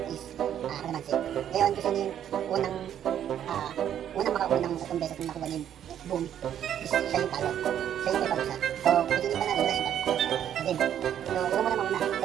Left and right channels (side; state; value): left; quieter; 10.1 dB